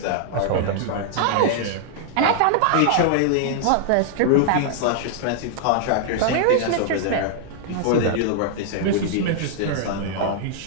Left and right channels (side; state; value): both; different; correlation -0.01